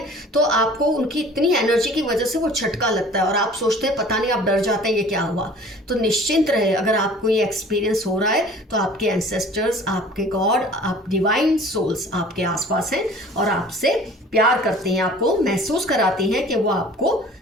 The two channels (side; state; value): both; normal; correlation 0.47